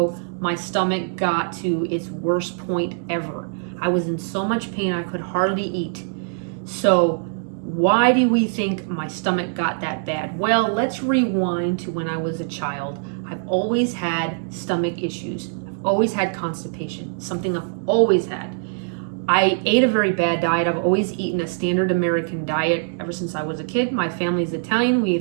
my stomach got to its worst point ever. I was in so much pain I could hardly eat. So why do we think my stomach got that bad? Well, let's rewind to when I was a child. I've always had stomach issues. I've always had constipation, something I've always had. I ate a very bad diet. I've always eaten a standard American diet ever since I was a kid. My family's Italian. We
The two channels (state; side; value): silent; left; digital silence